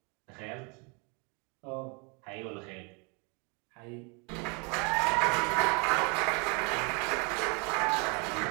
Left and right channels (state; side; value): quieter; left; 33.4 dB